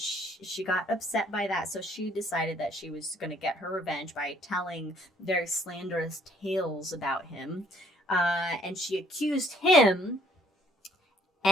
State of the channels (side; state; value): both; normal; correlation 0.62